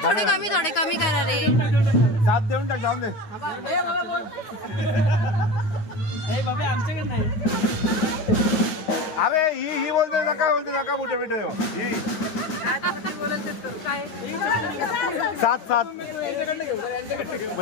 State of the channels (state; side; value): late; right; 9.6 ms